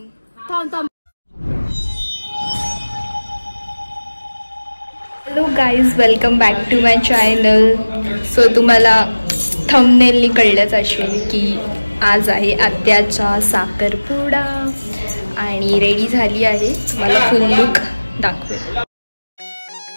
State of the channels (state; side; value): inverted; both; correlation -1.00